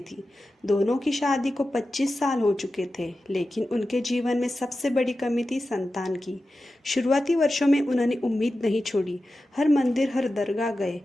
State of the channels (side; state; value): both; normal; correlation 0.93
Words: थी। दोनों की शादी को 25 साल हो चुके थे, लेकिन उनके जीवन में सबसे बड़ी कमी थी संतान की। शुरुआती वर्षों में उन्होंने उम्मीद नहीं छोड़ी। हर मंदिर, हर दरगाह गए,